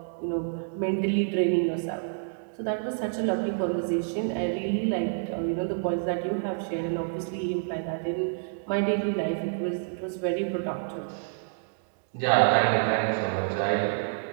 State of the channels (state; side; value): silent; left; digital silence